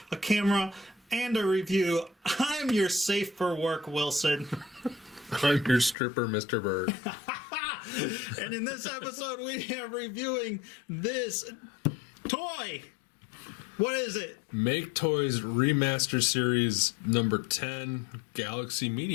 a camera, and a review. I'm your safe for work, Wilson. I'm your stripper, Mr. Bird. And in this episode, we are reviewing this toy. What is it? MakeToys Remaster Series number 10, Galaxy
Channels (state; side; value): drops out; right; at 6.0 s